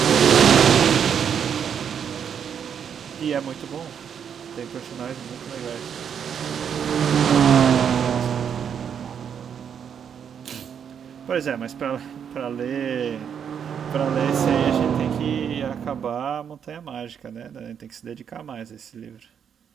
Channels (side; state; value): left; quieter; 7.9 dB